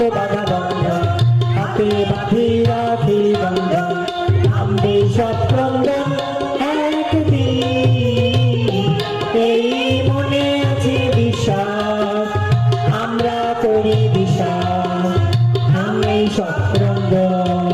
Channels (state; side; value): identical; both; correlation 1.00